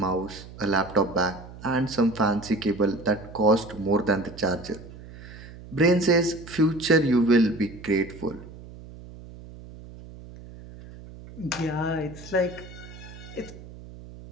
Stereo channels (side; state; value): right; noise; hum, 16 dB below the sound